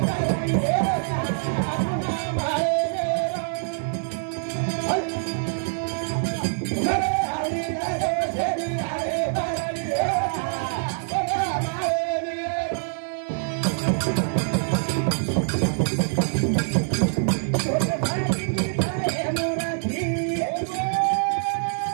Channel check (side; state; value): left; silent; 62 dB below the other